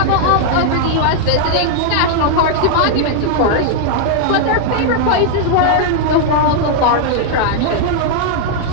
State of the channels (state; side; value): different; both; correlation -0.01